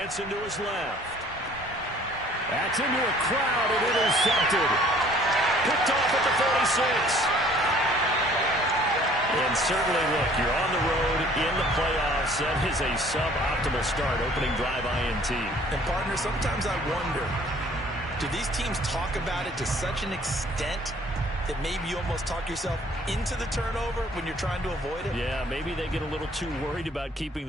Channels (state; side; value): normal; both; correlation 0.55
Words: to his left. That's into a crowd and intercepted. Picked off at the 46. And certainly, look, you're on the road in the playoffs. That is a suboptimal start, opening drive INT. And, partner, sometimes I wonder, do these teams talk about it to such an extent that maybe you almost talk yourself into the turnover when you're trying to avoid it? Yeah, maybe they get a little too worried about keeping